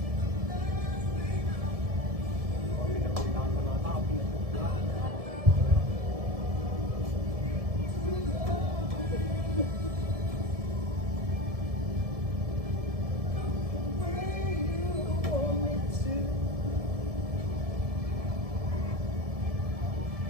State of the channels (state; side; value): late; left; 1.7 ms